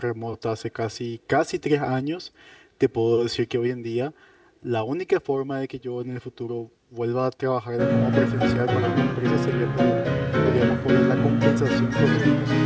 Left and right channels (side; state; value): both; identical; correlation 1.00